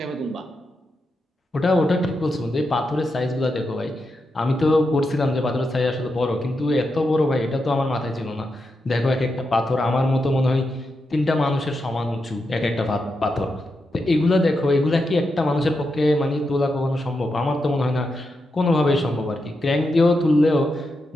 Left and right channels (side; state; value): both; normal; correlation 0.86